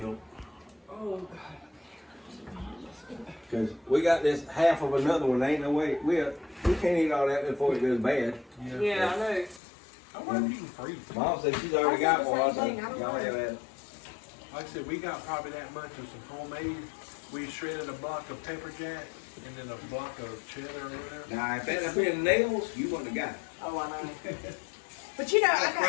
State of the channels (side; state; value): right; drops out; at 9.6 s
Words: Oh, Cause we got this half of another one, ain't no way, we can't eat all that before it goes bad. Yeah, I know. I wonder if you can freeze it. Mom said she's already got one, I I said the same said, thing, I don't y'all know. have that. Like I said, we got probably that much of some homemade. We shredded a block of pepper jack and then a block of cheddar or whatever. Now, if that had been nails, you wouldn't have got it. Oh, I know. But you know, I got,